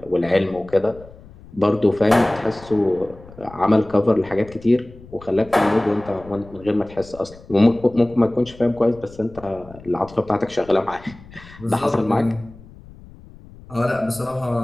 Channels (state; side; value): noise; left; rumble, 20 dB below the sound